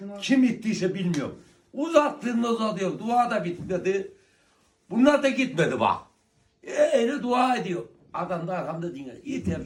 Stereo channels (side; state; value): both; identical; correlation 1.00